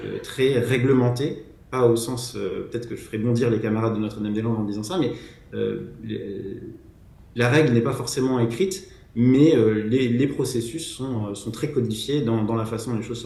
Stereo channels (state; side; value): identical; both; correlation 1.00